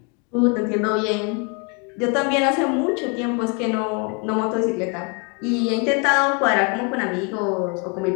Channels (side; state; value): right; quieter; 34.6 dB